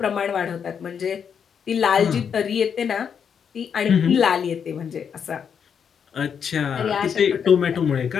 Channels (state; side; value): quieter; right; 7.3 dB